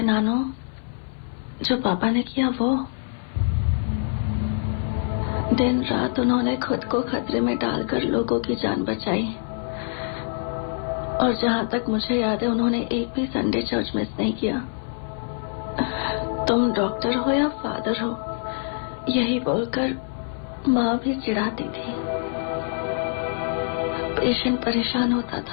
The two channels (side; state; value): right; silent; 62 dB below the other